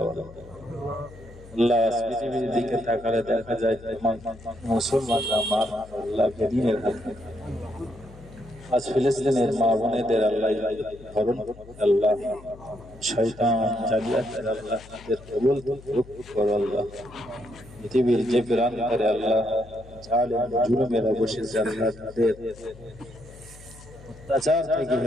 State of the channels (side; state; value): left; noise; hum, 19 dB below the sound